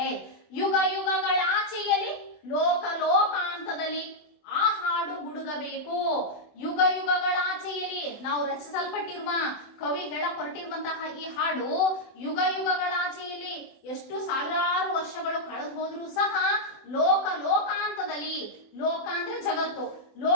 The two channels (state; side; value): late; right; 24 ms